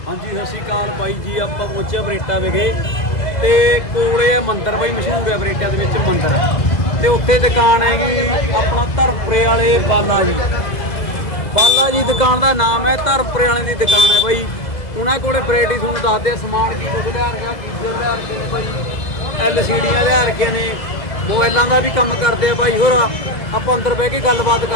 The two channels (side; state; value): right; late; 2.0 ms